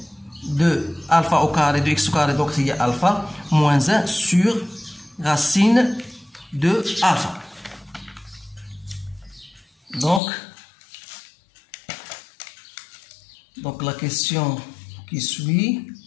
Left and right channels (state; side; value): drops out; right; at 10.2 s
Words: de alpha au carré de x au carré, donc il y a alpha moins 1 sur racine de alpha. Donc la question qui suit,